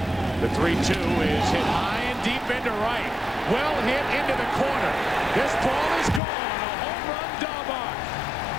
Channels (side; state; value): right; drops out; at 6.2 s